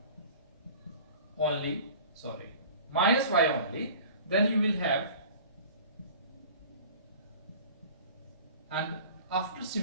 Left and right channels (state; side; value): inverted; both; correlation -0.43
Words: only, then you will have, and after